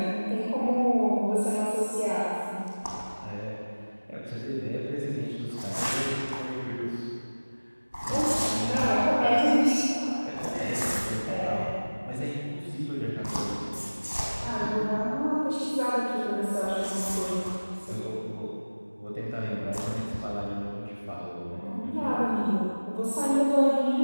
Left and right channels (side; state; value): both; inverted; correlation -1.00